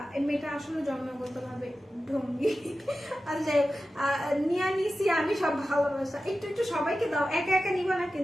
মেয়েটা আসলে জন্মগতভাবে ঢঙ্গি। আর যাই নিয়ে নিছি আমি সব ভালোবাসা, একটু একটু সবাইকে দাও, একা একা নিবা না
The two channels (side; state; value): both; normal; correlation 0.94